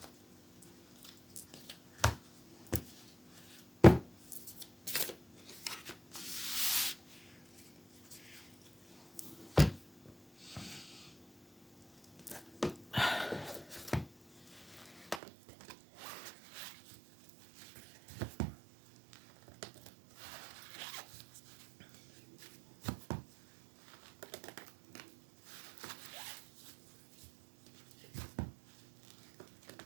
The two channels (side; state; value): left; drops out; at 15.2 s